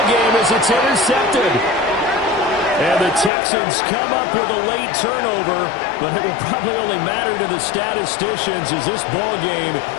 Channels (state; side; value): drops out; right; at 3.3 s